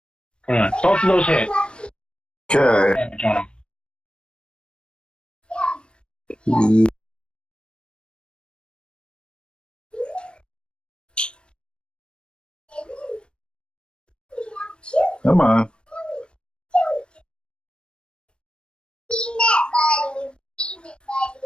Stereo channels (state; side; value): late; right; 0.055 ms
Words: Come on. Both of those hit. Okay. Damage on them. Come on.